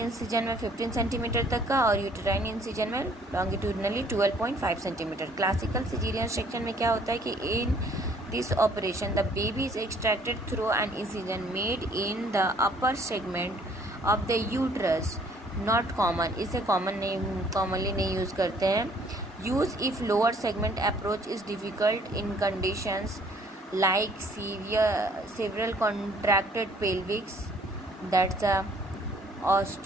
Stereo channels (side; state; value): both; normal; correlation 0.60